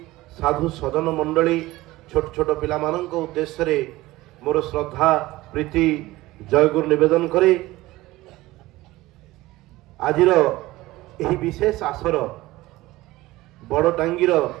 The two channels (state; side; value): quieter; left; 18.3 dB